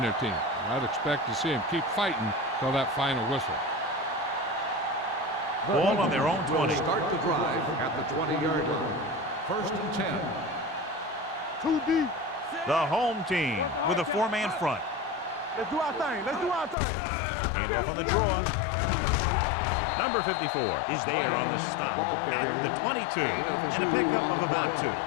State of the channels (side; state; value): right; drops out; at 16.8 s